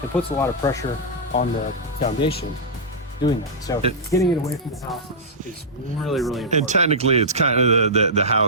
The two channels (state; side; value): normal; both; correlation -0.11